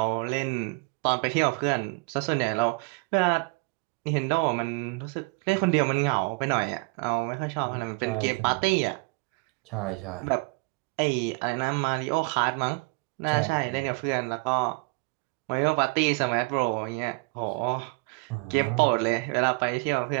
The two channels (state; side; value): quieter; left; 29.5 dB